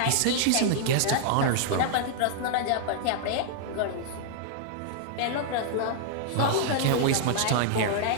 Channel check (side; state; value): both; different; correlation -0.01